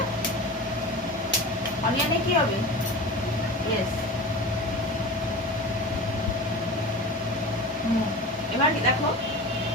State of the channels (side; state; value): both; normal; correlation 0.32